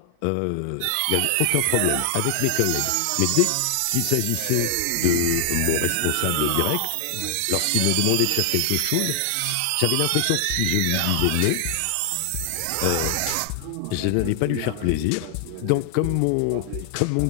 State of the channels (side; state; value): both; different; correlation 0.00